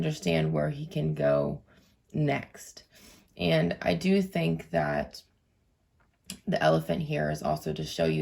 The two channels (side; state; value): both; identical; correlation 1.00